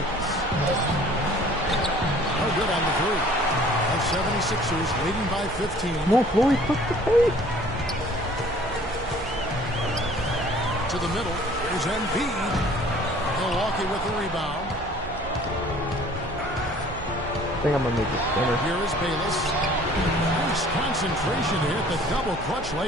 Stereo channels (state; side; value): noise; right; hum, 12 dB below the sound